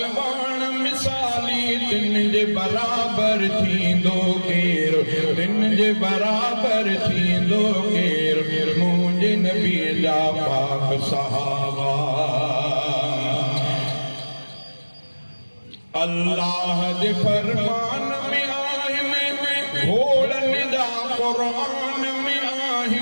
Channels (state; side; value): inverted; both; correlation -1.00